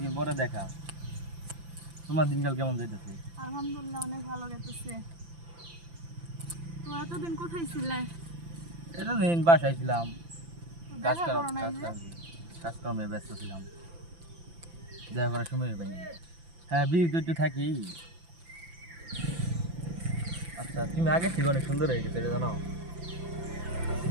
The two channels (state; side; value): late; left; 5.9 ms